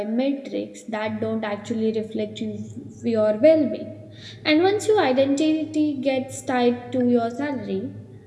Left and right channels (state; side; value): identical; both; correlation 1.00